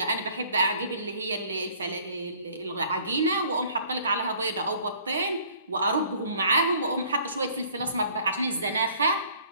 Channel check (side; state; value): both; inverted; correlation -0.55